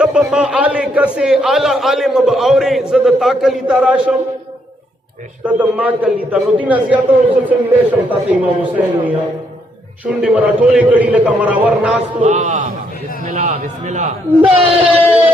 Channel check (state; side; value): normal; both; correlation 0.74